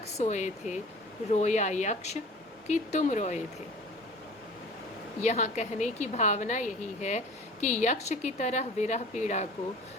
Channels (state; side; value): normal; both; correlation 0.43